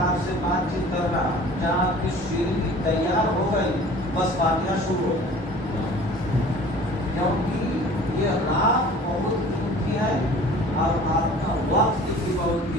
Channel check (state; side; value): normal; both; correlation 0.46